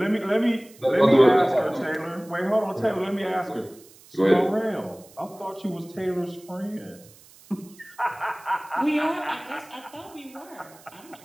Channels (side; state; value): right; noise; hiss, 24 dB below the sound